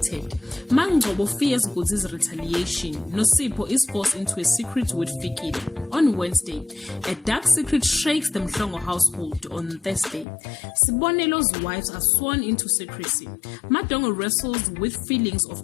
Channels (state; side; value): drops out; right; at 10.2 s